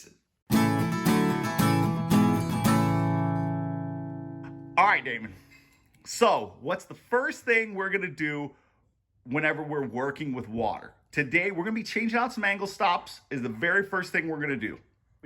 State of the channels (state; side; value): identical; both; correlation 1.00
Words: All right, Damon. So, what's the first thing we're gonna do whenever we're working with water? Today, we're gonna be changing out some angle stops is the very first thing we're gonna do.